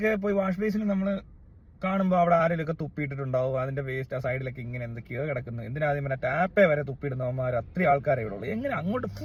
പോയി വാഷ് ബേസിൽ നമ്മൾ കാണുമ്പോൾ അവിടെ ആരെങ്കിലുമൊക്കെ തുപ്പിയിട്ടിട്ടുണ്ടാവും. അതിന്റെ വേസ്റ്റ് ആ സൈഡിലൊക്കെ ഇങ്ങനെ എന്തൊക്കെയോ കിടക്കുന്നു. എന്തിനാദ്യം പിന്നെ ടാപ്പേ വരെ തുപ്പിയിടുന്നവന്മാർ അത്രയും ആൾക്കാരെ ഇവിടെ ഉള്ളൂ. എങ്ങനെ അങ്ങോട്ട്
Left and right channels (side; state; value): both; identical; correlation 1.00